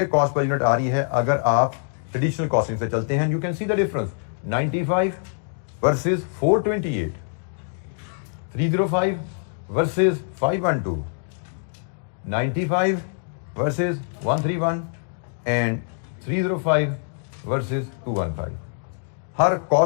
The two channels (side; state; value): right; silent; 62 dB below the other